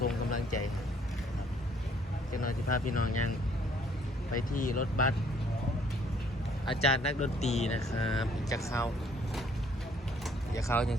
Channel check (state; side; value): normal; both; correlation 0.62